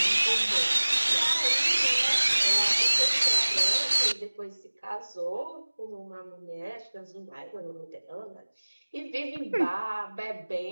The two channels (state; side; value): inverted; both; correlation -1.00